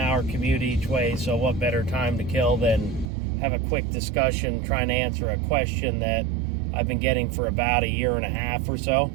commute each way, so what better time to kill than have a quick discussion trying to answer a question that I've been getting for about a year and a half or so.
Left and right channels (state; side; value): drops out; left; at 3.1 s